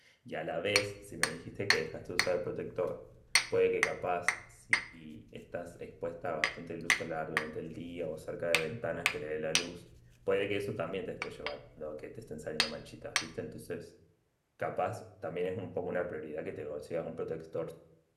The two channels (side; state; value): both; identical; correlation 1.00